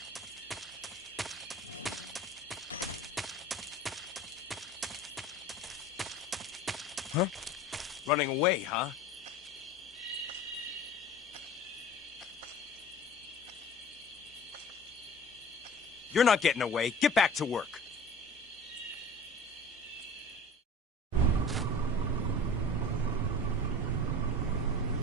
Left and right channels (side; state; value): both; normal; correlation 0.40